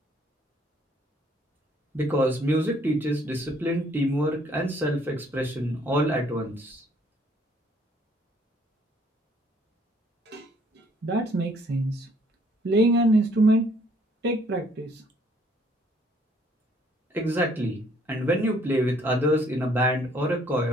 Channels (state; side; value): normal; both; correlation 0.63